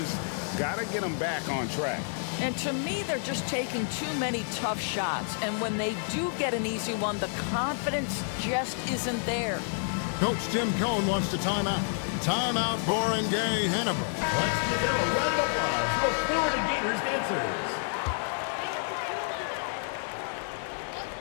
got to get them back on track. And to me, they're just taking too many tough shots. And when they do get an easy one, the confidence just isn't there. Coach Tim Cohn wants to timeout. Timeout, Barangay, Ginebra. Let's give them a round of applause for Florida Gators dancers.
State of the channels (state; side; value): silent; right; digital silence